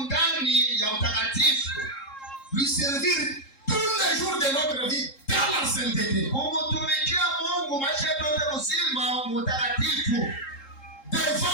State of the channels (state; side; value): late; right; 3.7 ms